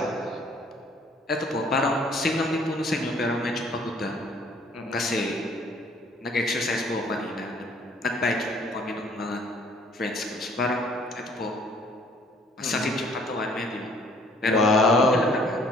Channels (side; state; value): both; normal; correlation 0.58